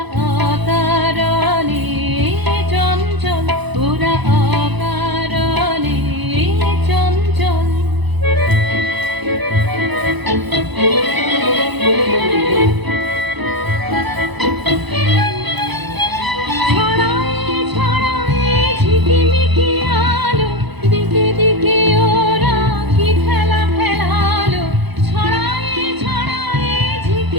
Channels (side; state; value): left; late; 1.0 ms